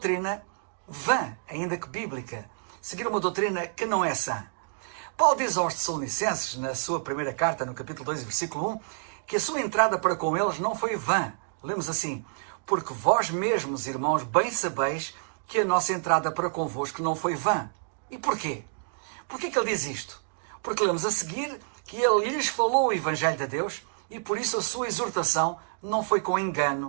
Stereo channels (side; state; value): left; silent; digital silence